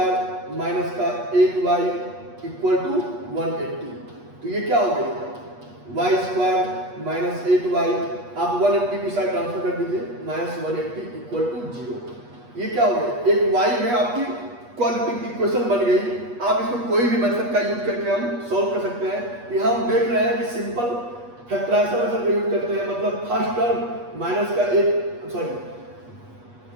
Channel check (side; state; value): left; late; 8.3 ms